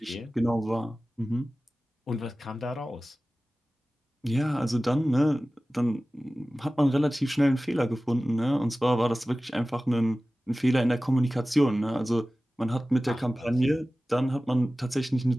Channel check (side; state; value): both; normal; correlation 0.96